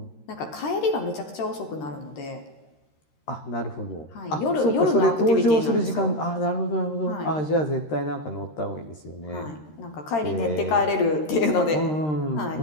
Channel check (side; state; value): right; late; 13 ms